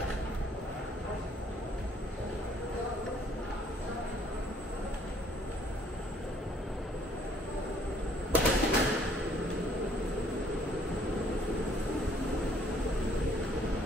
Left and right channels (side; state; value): both; normal; correlation 0.62